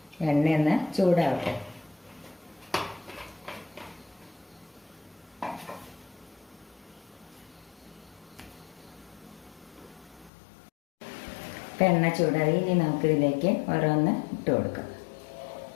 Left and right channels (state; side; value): drops out; right; at 10.3 s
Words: എണ്ണ ഒന്ന് ചൂടാവട്ടെ. ഇപ്പം എണ്ണ ചൂടായി. ഇനി നമുക്കിതിലേക്ക് ഓരോന്ന് ഇട്ട് കൊടുക്കാം.